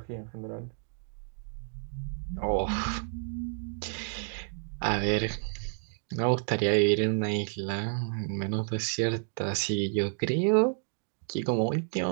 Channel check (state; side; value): silent; left; digital silence